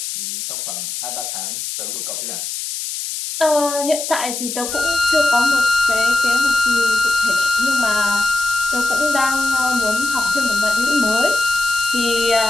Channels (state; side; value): noise; left; hiss, 5 dB below the sound